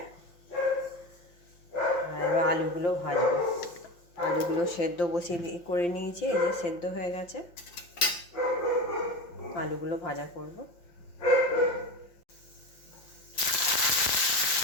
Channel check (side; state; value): right; late; 5.8 ms